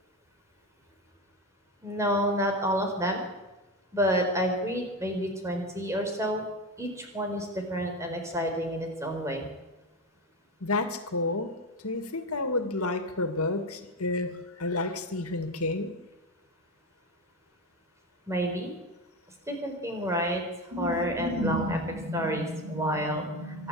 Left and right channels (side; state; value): both; normal; correlation 0.19